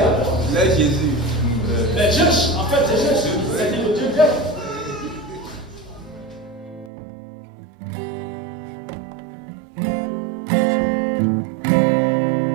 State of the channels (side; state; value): left; drops out; at 6.9 s